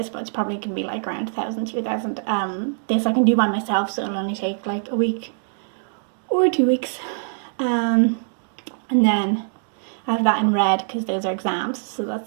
but it's probably going to be like around 1,000, 2,000. This I can do by myself, so it'll only take like a week or 2 weeks. And then I have that in red because those are exams, so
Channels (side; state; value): left; silent; digital silence